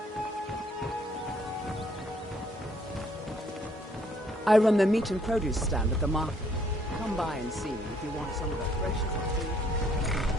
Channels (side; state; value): both; normal; correlation 0.66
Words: I run the meat and produce stand at the market. Come by and see me if you want some of the freshest food.